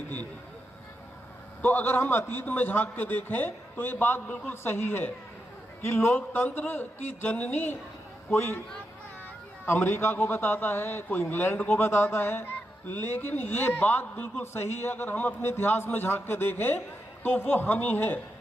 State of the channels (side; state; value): both; normal; correlation 0.86